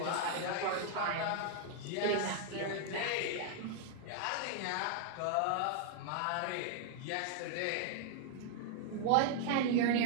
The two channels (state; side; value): different; both; correlation 0.00